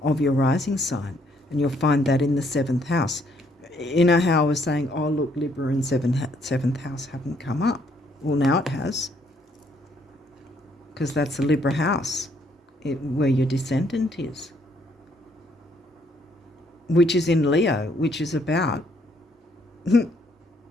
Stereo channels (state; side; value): normal; both; correlation 0.68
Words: of your rising sign. And you'll find that in the 7th house. You know how I was saying, oh, look, Libra and 7th house haven't come up. Well, now it has. Because that's the Libra house, where your descendant is. Which is in Leo, which is about